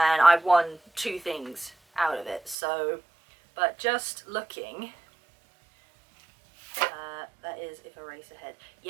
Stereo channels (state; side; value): drops out; left; at 2.6 s